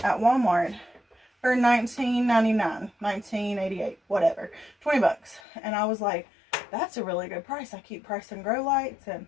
at Walmart for $19.99, $19.88, whatever, 20 bucks. And I was like, that's a really good price. I keep pricing grow lights and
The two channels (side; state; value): right; drops out; at 5.4 s